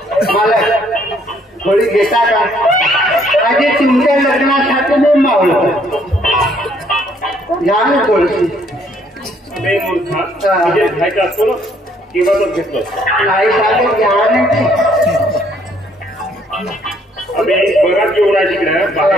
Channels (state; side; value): normal; both; correlation 0.66